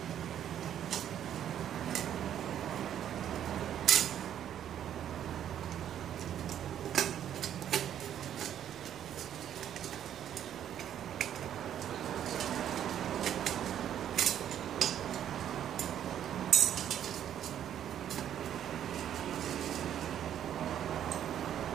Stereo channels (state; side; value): quieter; left; 10.2 dB